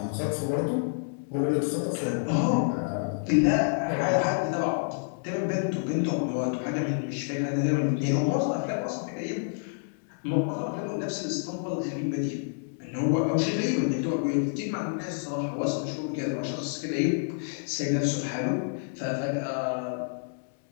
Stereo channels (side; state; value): right; silent; digital silence